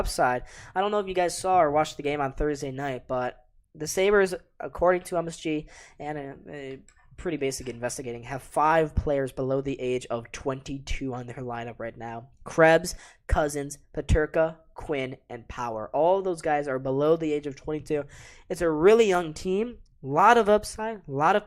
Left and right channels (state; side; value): identical; both; correlation 1.00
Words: I don't know if you guys saw or watched the game on Thursday night, but the Sabres, according to MSG and pretty basic investigating, have 5 players below the age of 22 on their lineup right now. Krebs, Cousins, Peterka, Quinn, and Power. All of those guys are below the age of 22. It's a really young team. A lot of upside, a lot of